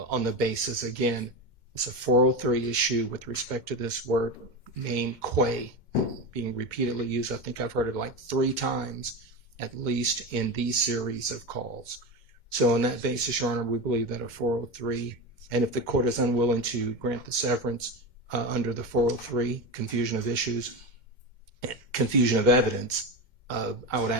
on the basis, again, it's a 403 issue with respect to this word name quay being repeatedly used. I think I've heard it like 3 times at least in these series of calls. So on that basis, Your Honor, we believe that a 403, and if the court is unwilling to grant the severance under the 403, confusion of issues, confusion of evidence, I would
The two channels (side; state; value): left; late; 2.1 ms